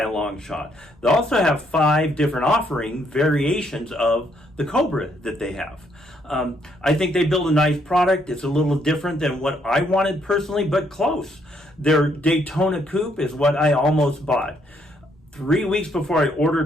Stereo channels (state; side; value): normal; both; correlation 0.72